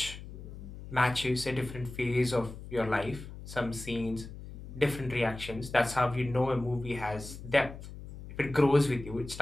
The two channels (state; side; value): noise; left; hum, 12 dB below the sound